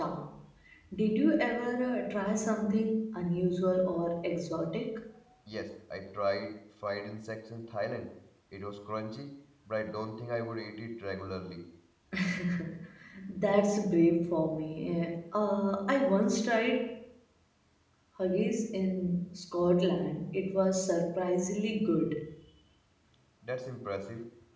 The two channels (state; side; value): identical; both; correlation 1.00